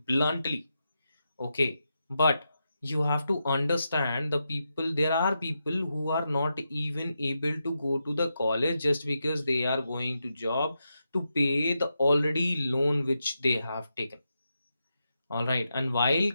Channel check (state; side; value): inverted; both; correlation -0.86